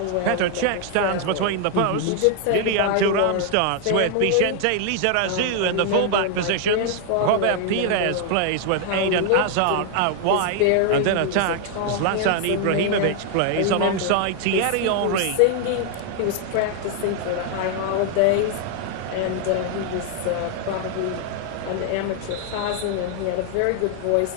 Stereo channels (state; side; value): different; both; correlation 0.00